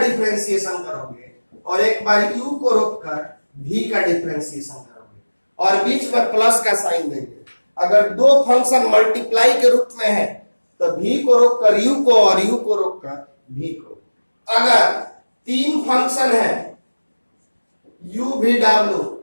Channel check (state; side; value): inverted; both; correlation -1.00